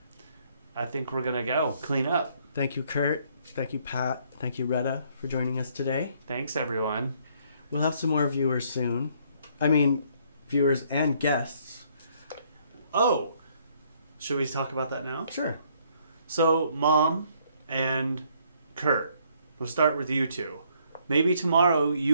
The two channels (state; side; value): inverted; both; correlation -0.66